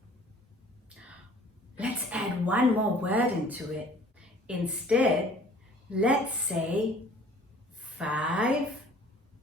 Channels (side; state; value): both; normal; correlation 0.51